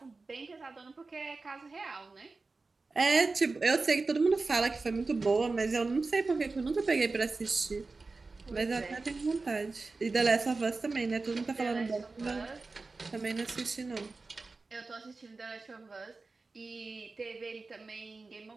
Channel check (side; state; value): left; quieter; 3.8 dB